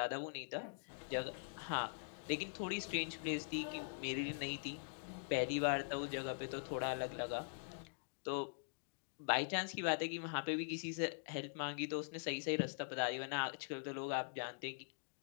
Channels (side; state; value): right; silent; digital silence